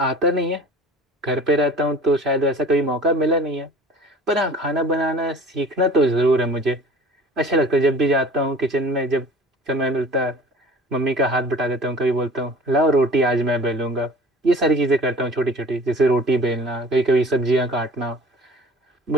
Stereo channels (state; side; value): normal; both; correlation 0.44